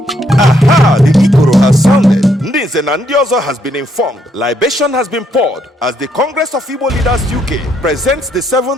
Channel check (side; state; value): both; normal; correlation 0.73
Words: Aha, the Ikoro has sounded. Ndị Nze na ndị ọzọ has been informed. Libation has been poured as the Congress of Igbo Leaders UK presents the